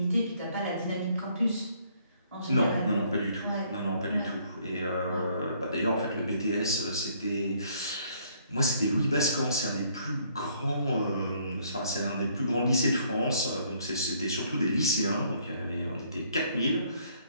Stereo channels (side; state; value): both; inverted; correlation -0.64